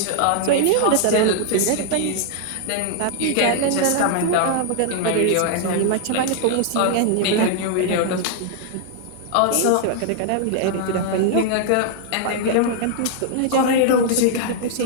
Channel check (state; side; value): different; both; correlation -0.01